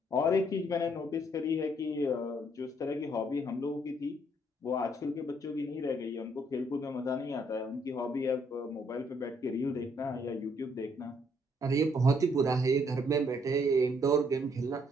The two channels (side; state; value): both; normal; correlation 0.68